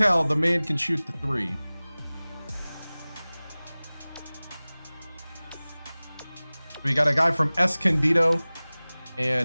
the man can shoot the 3. We got a guy from Escondido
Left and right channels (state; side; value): inverted; both; correlation -0.99